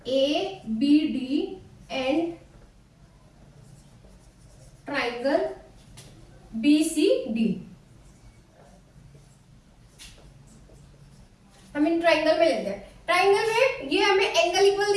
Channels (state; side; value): identical; both; correlation 1.00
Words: A B D and triangle B C D. हम इन ट्राइंगल में लेते हैं, ट्राइंगल में ये हमें एंगल इक्वल